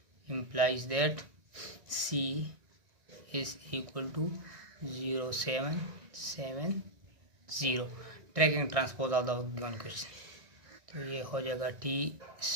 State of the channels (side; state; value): left; late; 1.6 ms